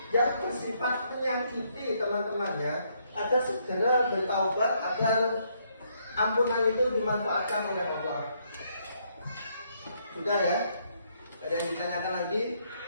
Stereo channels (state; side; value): inverted; both; correlation -0.72